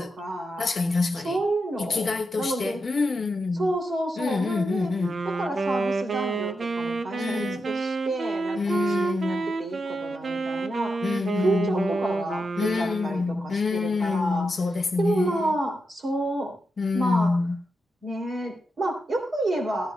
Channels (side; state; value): both; normal; correlation 0.86